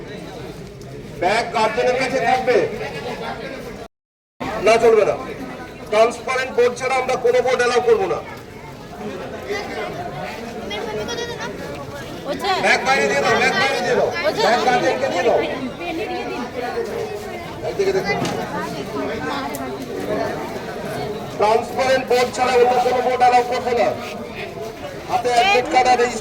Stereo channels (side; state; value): both; identical; correlation 1.00